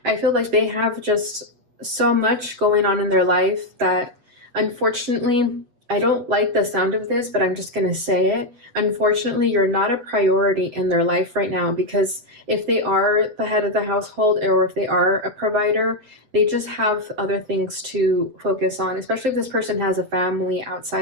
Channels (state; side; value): late; left; 8.2 ms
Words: I feel like they have just so much going on in their life that unfortunately I don't like the sound of this, but I'm just going to say it. Unfortunately, you're not a priority in their life right now, because if they are the head of the household or if they are a provider, they just have other things to focus on, especially if this person has a family